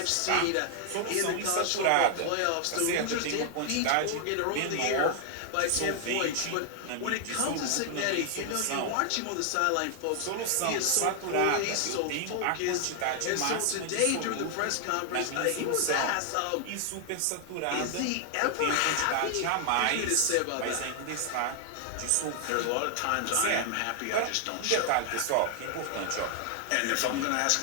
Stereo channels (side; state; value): both; different; correlation 0.00